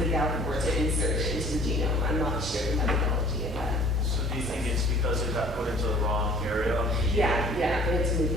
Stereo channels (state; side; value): normal; both; correlation 0.52